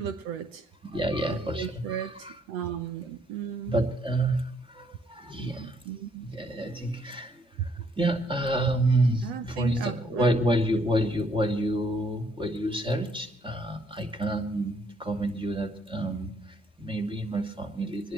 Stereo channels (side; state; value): both; normal; correlation 0.68